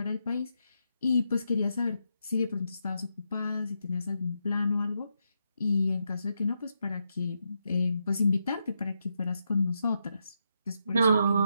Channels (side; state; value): both; inverted; correlation -0.83